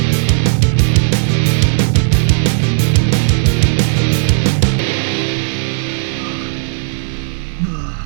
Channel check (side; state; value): left; silent; digital silence